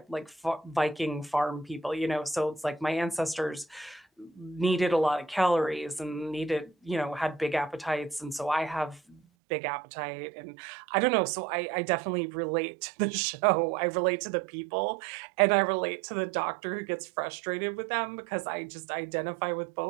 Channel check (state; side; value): drops out; left; at 9.2 s